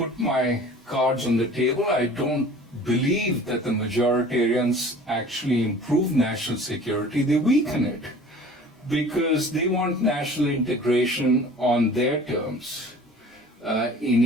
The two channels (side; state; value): both; normal; correlation 0.45